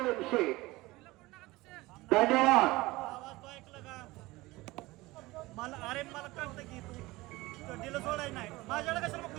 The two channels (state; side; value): quieter; left; 20.4 dB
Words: धन्यवाद मला कळतं की तू दिलं सोडाय नाही माझ्याकडे कसं मग